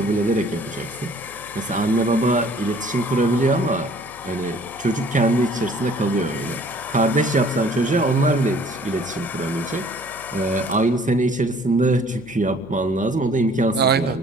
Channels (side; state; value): left; noise; hum, 21 dB below the sound